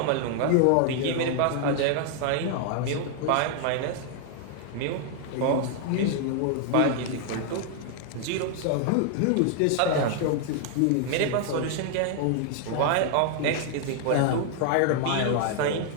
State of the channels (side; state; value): both; different; correlation 0.00